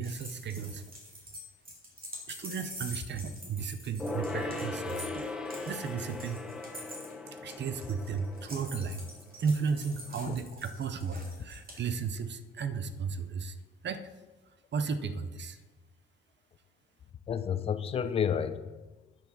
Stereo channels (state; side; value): normal; both; correlation 0.56